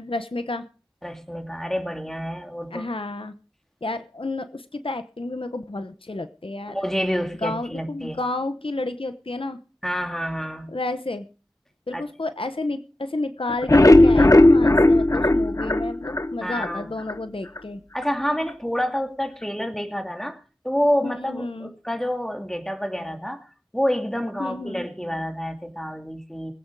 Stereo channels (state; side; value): normal; both; correlation 0.92